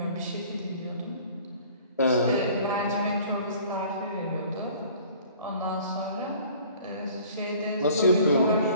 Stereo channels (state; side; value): inverted; both; correlation -0.51